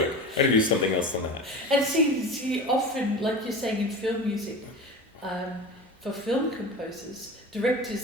I'm going to do something else on that. And see, often, like you're saying in film music, for film composers, directors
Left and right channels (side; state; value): both; normal; correlation 0.31